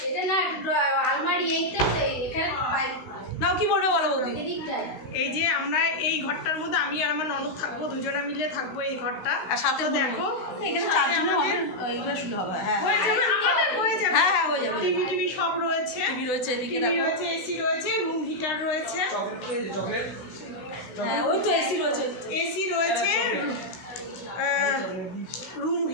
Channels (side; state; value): right; late; 16 ms